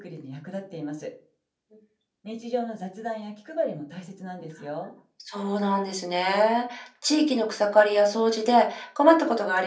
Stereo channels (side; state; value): both; identical; correlation 1.00